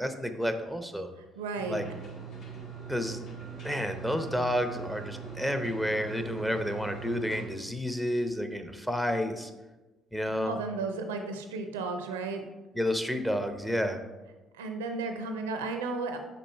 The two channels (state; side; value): normal; both; correlation 0.75